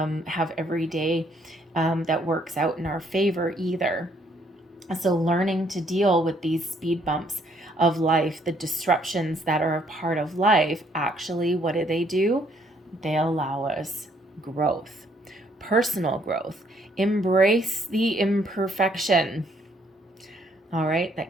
every day that works out in our favor either. So, learning to deal with these speed bumps of life, the disruptions that are a part of life, actually, what do? They allow us growth, personal growth. Embrace the imperfection. All right.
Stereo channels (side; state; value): both; normal; correlation 0.67